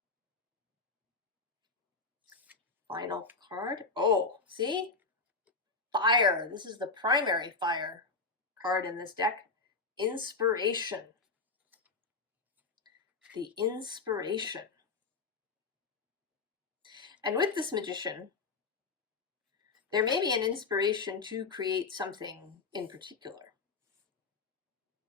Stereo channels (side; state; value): right; quieter; 4.1 dB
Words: Final card. Oh, see? Fire. This is the primary fire card in this deck. Inspiration. The inspiration. And with this Magician, there may be an inspiration to create something in particular.